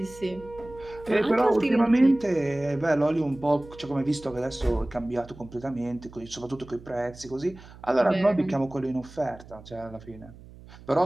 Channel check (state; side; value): noise; right; hum, 19 dB below the sound